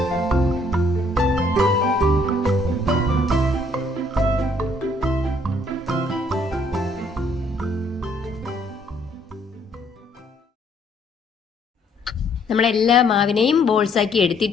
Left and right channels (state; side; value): normal; both; correlation 0.66